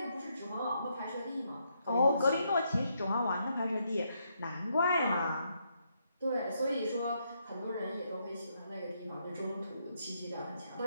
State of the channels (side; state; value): both; inverted; correlation -0.77